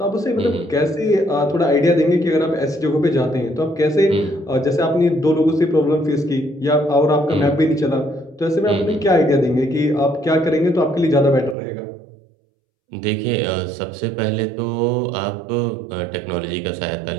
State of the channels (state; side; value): drops out; left; at 11.6 s